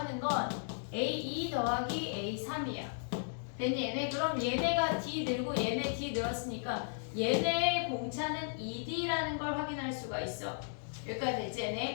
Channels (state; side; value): silent; right; digital silence